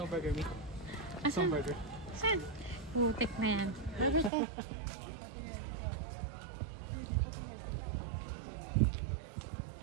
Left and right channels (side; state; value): left; drops out; at 4.3 s